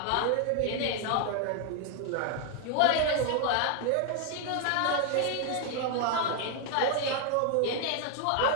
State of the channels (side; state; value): both; different; correlation 0.01